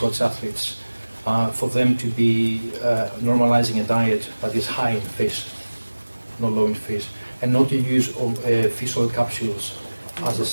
athletes, for them to be normalizing a diet that is high in fish, not low in fish, and not to use fish oil capsules as a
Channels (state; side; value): inverted; both; correlation -1.00